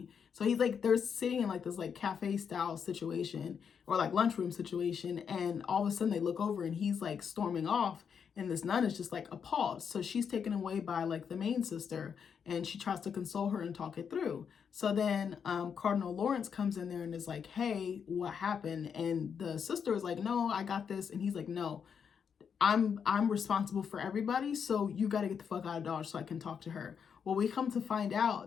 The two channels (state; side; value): quieter; right; 7.0 dB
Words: So he's like, they're sitting in like this like cafe style situation or like lunchroom situation. And all of a sudden they look over and he's like storming off. And this nun is just like appalled. So she's taken away by like the main sister and she tries to console her and talk it through. So then Cardinal Lawrence comes in there and is like, hey, what happened? And the sister is like, no, I got this. And he's like, no, I'm responsible for everybody, so you got to get the fuck out of Dodge so I can talk to her. Well, we come to find